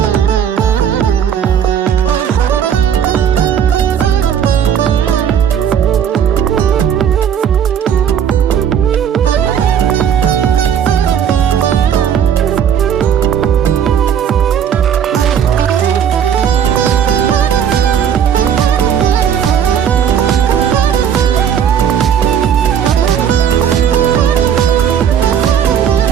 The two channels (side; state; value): left; quieter; 8.6 dB